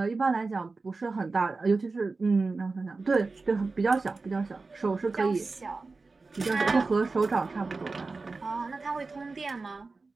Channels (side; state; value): left; quieter; 3.9 dB